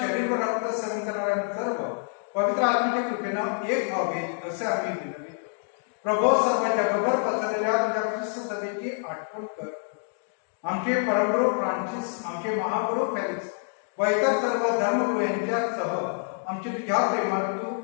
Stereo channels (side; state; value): right; silent; 60 dB below the other